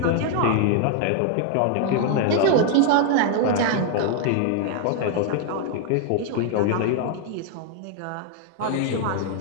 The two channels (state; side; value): different; both; correlation 0.00